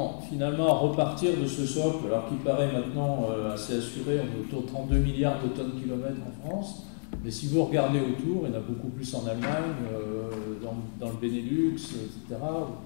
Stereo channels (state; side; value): silent; right; digital silence